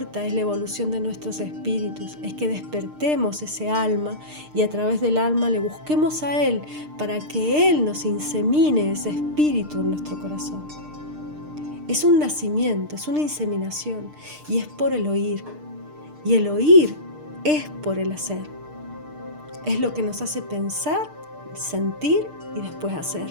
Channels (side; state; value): left; late; 6.6 ms